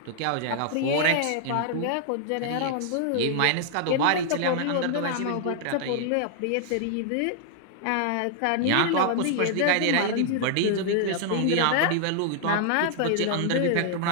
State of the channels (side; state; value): both; different; correlation 0.00